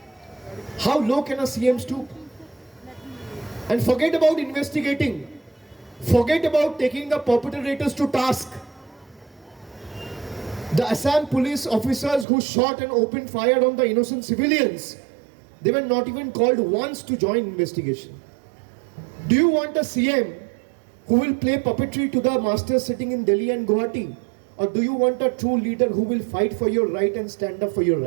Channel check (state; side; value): drops out; left; at 12.2 s